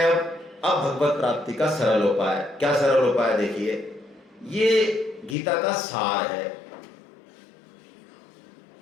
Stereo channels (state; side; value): drops out; right; at 5.4 s